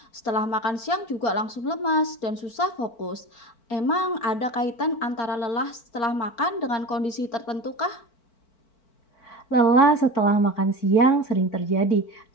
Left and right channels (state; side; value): late; right; 4.3 ms